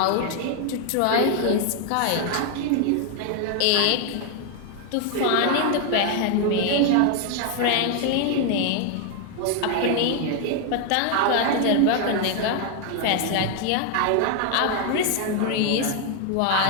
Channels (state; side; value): different; both; correlation 0.01